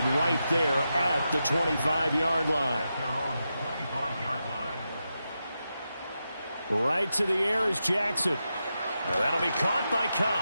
right there at the 25-yard line. Right to the air is Jackson. Now that'll be caught by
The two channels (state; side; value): inverted; both; correlation -0.88